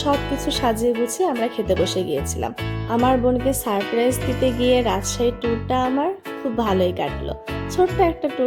সব কিছু সাজিয়ে গুছিয়ে আমরা খেতে বসে গিয়েছিলাম। আমার বোনকে সারপ্রাইজ দিতে গিয়ে রাজশাহী ট্যুরটা আমার খুব ভালোই কাটলো। ছোট্ট একটা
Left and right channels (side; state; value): both; identical; correlation 1.00